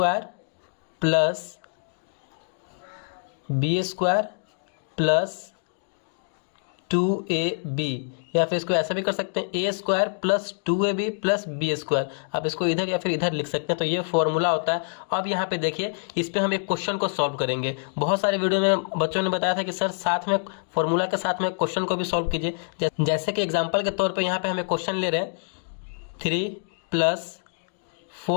plus B square plus 2ab, या फिर इसको ऐसा भी कर सकते हैं A square plus 2ab plus B square. आप इसको इधर या फिर इधर लिख सकते हैं। तो ये फॉर्मूला होता है। अब यहाँ पे देखिए, इस पे हम एक क्वेश्चन को सॉल्व करेंगे। बहुत सारे वीडियो में बच्चों ने बताया था कि सर साथ में फॉर्मूला के साथ में क्वेश्चन को भी सॉल्व कीजिए। जैसे कि एग्जाम्पल के तौर पर यहाँ पे हमें क्वेश्चन ले रहे हैं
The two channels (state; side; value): silent; right; digital silence